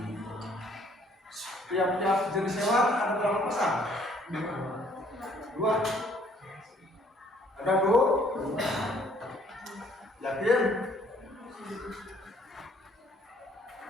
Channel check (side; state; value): both; normal; correlation 0.61